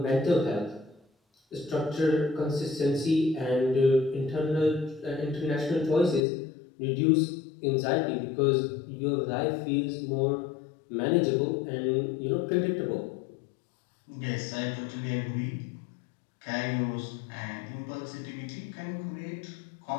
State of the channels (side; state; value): right; drops out; at 6.2 s